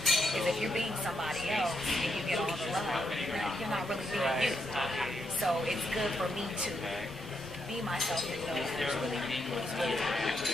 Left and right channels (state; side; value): normal; both; correlation 0.80